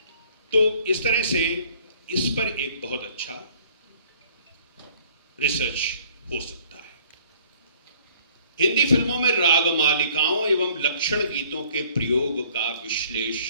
तो इस तरह से इस पर एक बहुत अच्छा रिसर्च हो सकता है। हिंदी फिल्मों में राग मालिकाओं एवं लक्षण गीतों के प्रयोग का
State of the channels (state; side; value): inverted; both; correlation -0.57